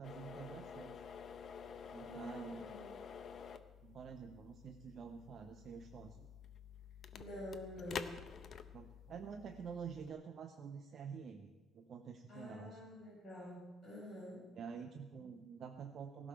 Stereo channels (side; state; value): both; normal; correlation 0.65